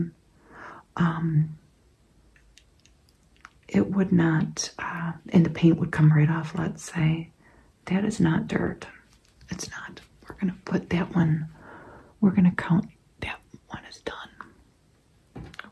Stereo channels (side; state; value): both; identical; correlation 1.00